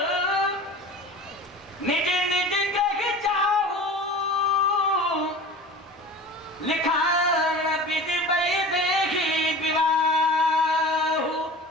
निज निज ग्रह जाहू, लिखा विधि बई देही विवाहु।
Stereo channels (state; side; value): normal; both; correlation 0.37